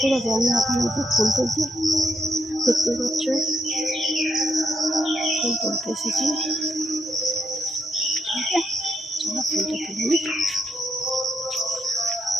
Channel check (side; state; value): both; normal; correlation 0.79